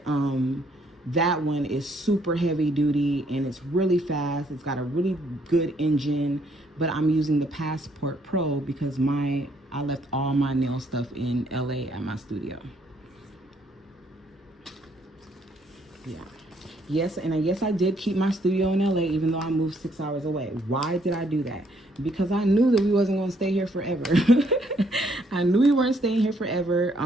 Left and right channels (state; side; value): normal; both; correlation 0.68